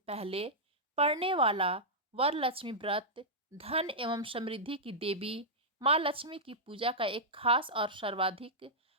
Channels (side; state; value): both; normal; correlation -0.09